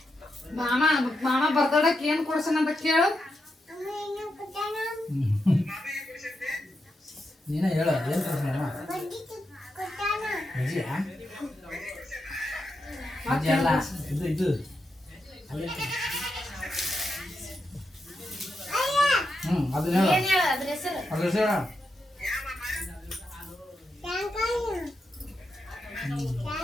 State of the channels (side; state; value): both; normal; correlation 0.85